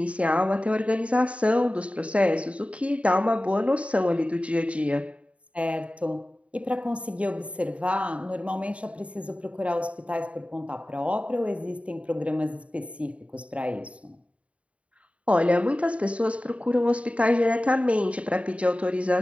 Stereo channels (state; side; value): late; left; 0.063 ms